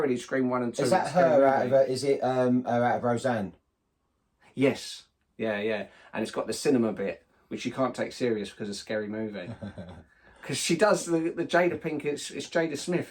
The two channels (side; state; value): both; identical; correlation 1.00